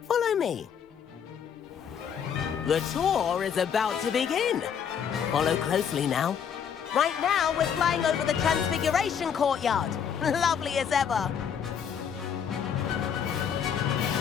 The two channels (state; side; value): quieter; right; 7.8 dB